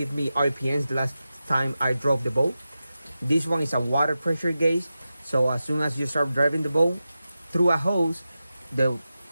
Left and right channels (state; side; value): inverted; both; correlation -0.92